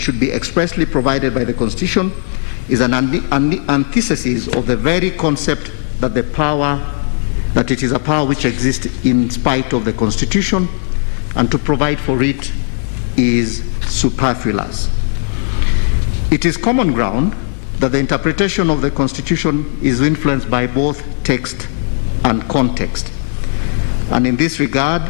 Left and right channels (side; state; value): right; silent; digital silence